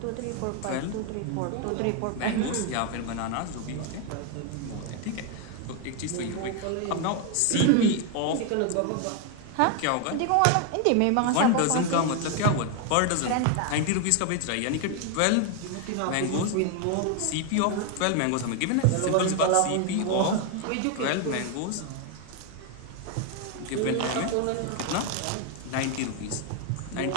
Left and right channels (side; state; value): both; different; correlation 0.01